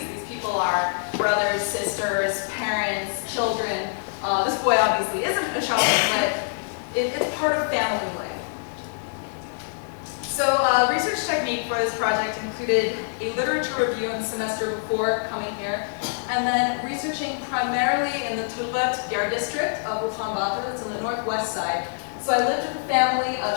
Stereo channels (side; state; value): right; silent; digital silence